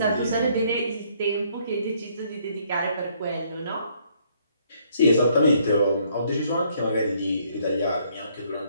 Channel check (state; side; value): inverted; both; correlation -0.67